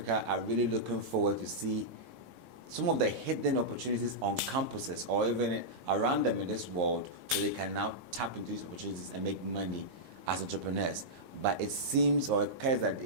are really looking forward to see some of the hidden opportunities on campuses or even around them in this world, so they can now tap into these opportunities and make money as entrepreneurs. But it seems or it occurs that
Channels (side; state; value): left; late; 19 ms